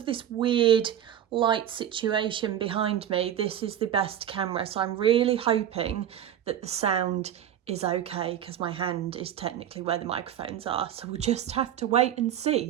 this weird light situation behind me, this is the best camera. So I'm really hoping that the sound is okay because my hand is technically where the microphones are. So we'll just have to wait and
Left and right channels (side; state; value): left; quieter; 10.6 dB